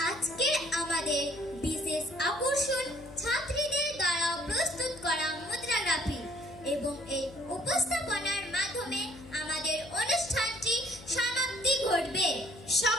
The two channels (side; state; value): left; noise; hum, 18 dB below the sound